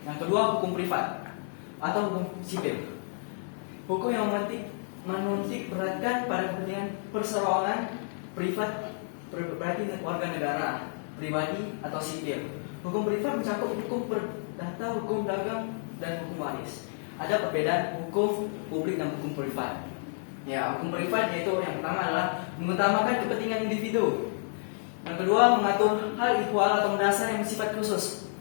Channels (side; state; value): right; silent; 58 dB below the other